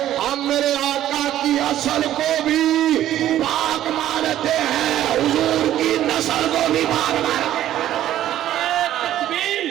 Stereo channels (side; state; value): left; quieter; 12.5 dB